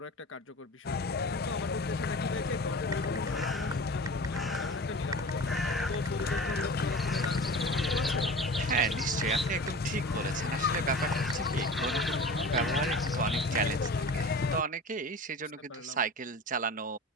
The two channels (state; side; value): normal; both; correlation 0.36